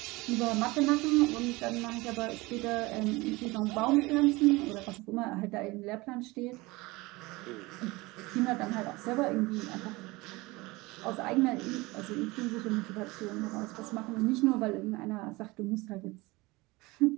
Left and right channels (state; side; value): quieter; left; 22.4 dB